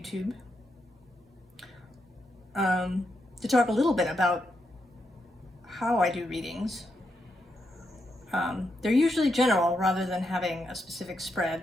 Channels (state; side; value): normal; both; correlation 0.83